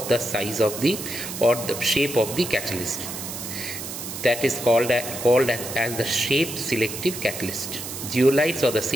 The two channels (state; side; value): noise; right; hiss, 8 dB below the sound